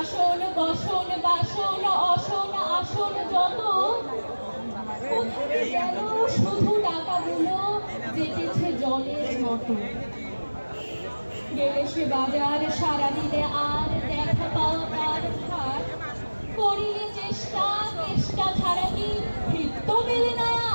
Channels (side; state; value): both; inverted; correlation -1.00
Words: বসন বাসন অসন আসন যত, কোথায় গেল শুধু টাকাগুলো যেতেছে জলের মতো। গেলে সে বাজার সারা দিলে আর দেখা পাওয়া তার ভার। করিলে চেষ্টা চেষ্টা ছাড়া কি ভৃত্য মেলে না।